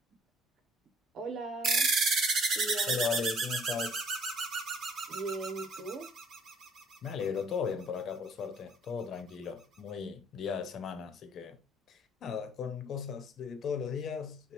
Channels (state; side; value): normal; both; correlation 0.58